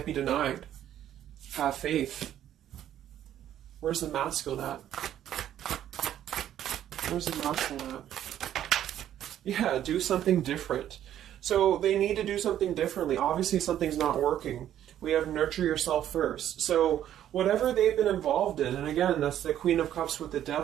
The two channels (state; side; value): quieter; left; 11.2 dB